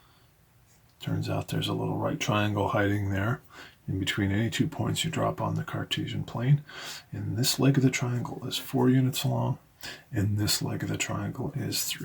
Turns out there's a little right triangle hiding there in between any 2 points you drop on the Cartesian plane. And this leg of the triangle is 4 units long, and this leg of the triangle is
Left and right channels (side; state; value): both; identical; correlation 1.00